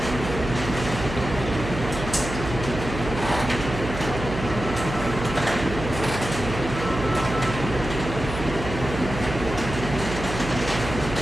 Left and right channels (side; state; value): right; noise; hum, 7 dB below the sound